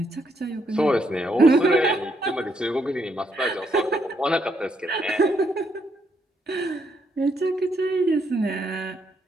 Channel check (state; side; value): normal; both; correlation 0.75